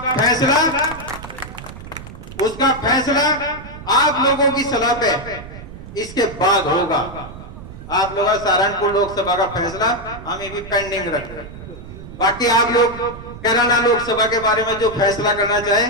फैसला आप लोगों की सलाह पे इसके बाद होगा। आप लोग सहारनपुर लोकसभा का फैसला हम ये भी पेंडिंग रख रहे हैं। बाकी आप लोग कैराना लोकसभा के बारे में जो फैसला करना चाहे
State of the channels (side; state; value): right; noise; rumble, 14 dB below the sound